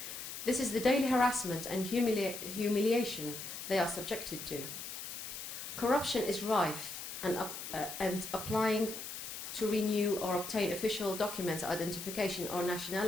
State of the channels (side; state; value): left; noise; hiss, 8 dB below the sound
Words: This is the daily harassment and humiliation they are subjected to. Corruption is rife, and applying to renew or obtain official documents, identification or